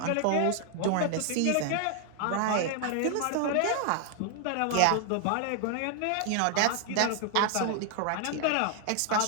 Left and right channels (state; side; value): different; both; correlation 0.00